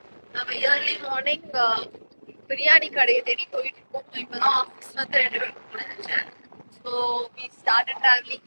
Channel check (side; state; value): both; inverted; correlation -1.00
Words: நம்ம ஏர்லி மார்னிங் பிரியாணி கடையை தேடி போயிட்டு இருக்கோம். இப்போ தான் ஆஃபீஸ் வந்து 2 பேருக்கு முடிஞ்சிச்சு. So we started travelling.